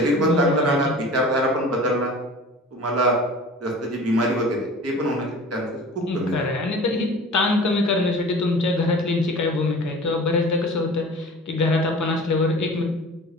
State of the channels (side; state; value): both; normal; correlation 0.41